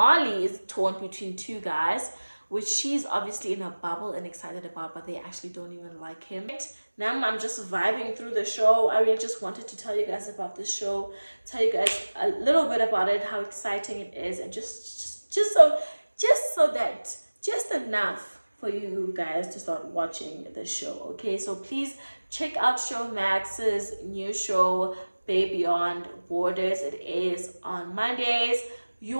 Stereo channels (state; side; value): inverted; both; correlation -1.00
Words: is torn between 2 guys, which she's obviously in a bubble and excited about, but they actually don't even like him. Now I'm just vibing through the show. I really just wanted to tell you guys about this show, tell you guys a little bit about it, how exciting it is, and just enough for you guys to start watching the show. Okay, so please check out Showmax's new show, Bay Beyond Borders. It is on Mondays. You